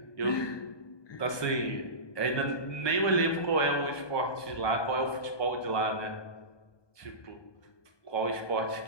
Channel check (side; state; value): right; late; 1.2 ms